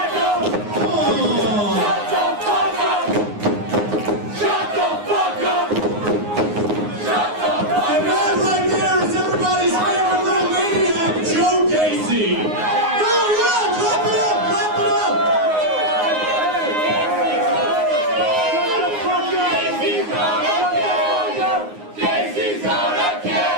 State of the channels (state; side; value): late; left; 9.6 ms